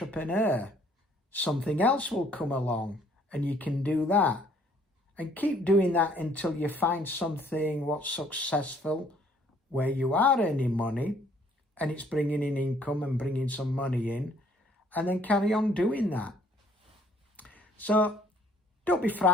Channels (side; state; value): both; normal; correlation 0.61